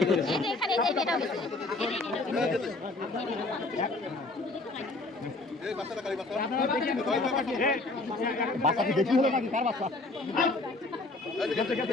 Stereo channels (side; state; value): right; quieter; 3.1 dB